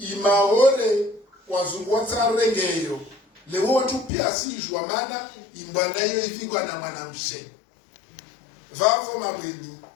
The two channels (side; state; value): right; drops out; at 4.1 s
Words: wazungwata rengeyo leo watu pia sijua maana imbanayo ifingwa na mwanamshe vavo mabweni